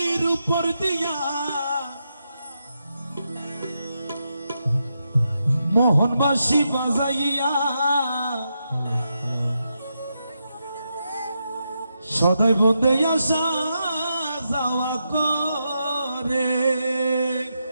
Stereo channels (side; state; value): both; inverted; correlation -0.84